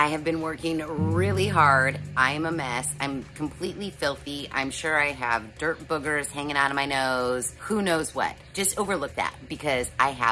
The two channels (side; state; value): both; identical; correlation 1.00